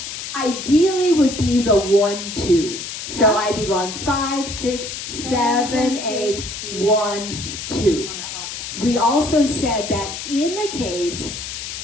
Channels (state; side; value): noise; left; hiss, 7 dB below the sound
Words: ideally would be the 1-2. So I'd be going 5, 6, 7, 8, 1, 2. We also said that in the case